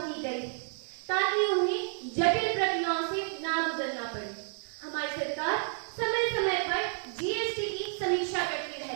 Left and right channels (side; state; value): left; silent; 57 dB below the other